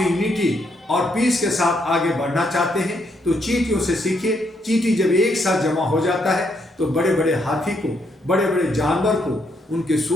यूनिटी और पीस के साथ आगे बढ़ना चाहते हैं तो चींटियों से सीखिए। चींटी जब एक साथ जमा हो जाता है तो बड़े बड़े हाथी को, बड़े बड़े जानवर को उनके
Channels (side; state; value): both; normal; correlation 0.75